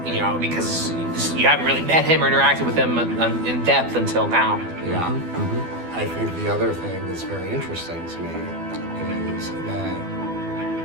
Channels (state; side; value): late; left; 12 ms